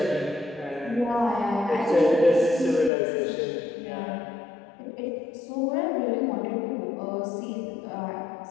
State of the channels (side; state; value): right; drops out; at 2.9 s